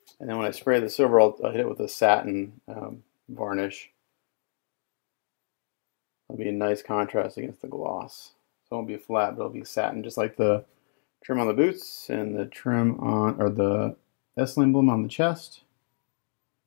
And then when I spray the silver, I'll hit it with a satin varnish. It'll be a nice contrast against the gloss. So it won't be flat, but it'll be satin, just like the trim on the boots and the trim on, or the S emblem on the chest.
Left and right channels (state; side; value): silent; right; digital silence